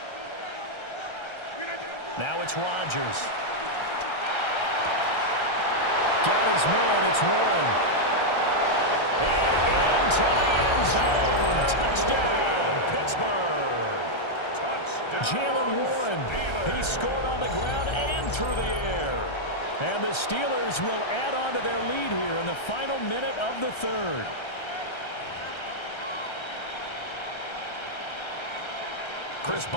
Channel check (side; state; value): right; late; 1.3 ms